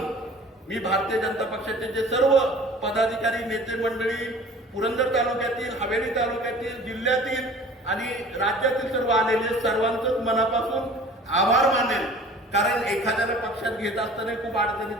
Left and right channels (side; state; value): both; normal; correlation 0.46